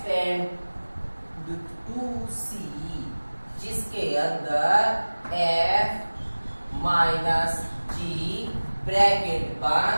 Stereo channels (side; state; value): both; inverted; correlation -1.00